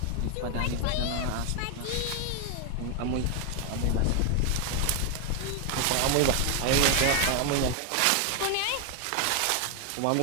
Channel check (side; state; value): both; different; correlation 0.01